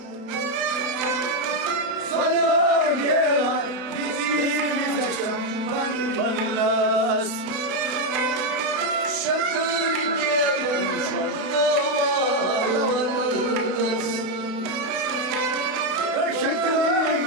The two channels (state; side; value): late; left; 32 ms